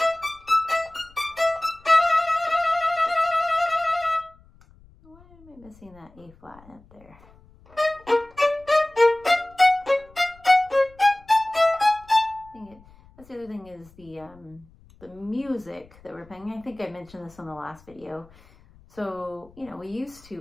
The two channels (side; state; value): left; noise; rumble, 26 dB below the sound